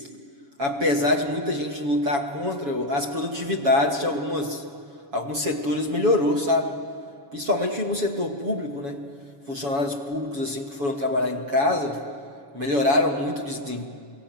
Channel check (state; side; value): late; left; 7.1 ms